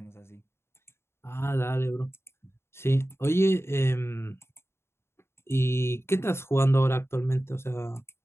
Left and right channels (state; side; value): late; right; 0.12 ms